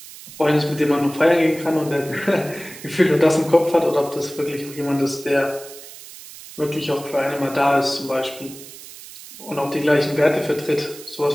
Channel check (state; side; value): noise; right; hiss, 16 dB below the sound